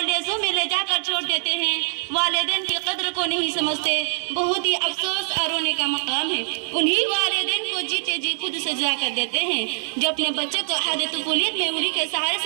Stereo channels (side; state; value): left; silent; 63 dB below the other